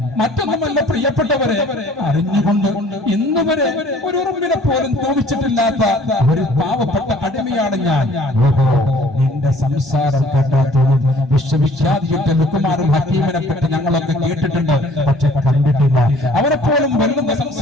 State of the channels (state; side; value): normal; both; correlation 0.54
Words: മറ്റൊന്നുമല്ല പ്രിയപ്പെട്ടവരെ, അറിഞ്ഞുകൊണ്ട് ഇന്നുവരെ ഒരു ഉറുമ്പിനെ പോലും തോന്നിച്ചിട്ടില്ലാത്ത ഒരു പാവപ്പെട്ട അടിമയാണ് ഞാൻ. ഓഹോ, നിന്റെ സംസാരം കേട്ടാത്തോളം വിശ്വവിഖ്യാതിയുടെ ലുക്കുമാറും ഹക്കീമിനെ പറ്റി ഞങ്ങളൊക്കെ കേട്ടിട്ടുണ്ട്, പക്ഷെ കണ്ടിട്ടില്ല. അവരെ പോലും വെല്ലുന്ന